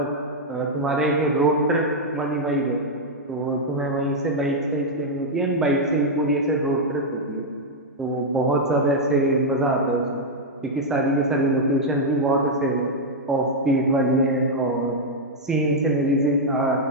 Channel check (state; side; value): normal; both; correlation -0.02